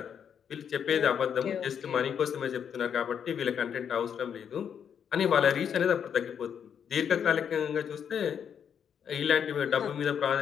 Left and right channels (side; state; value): right; quieter; 8.0 dB